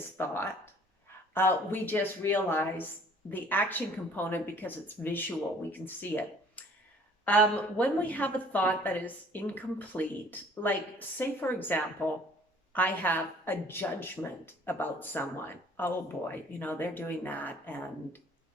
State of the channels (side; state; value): both; normal; correlation 0.54